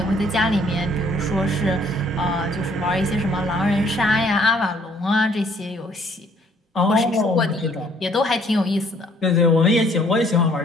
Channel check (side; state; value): both; normal; correlation 0.62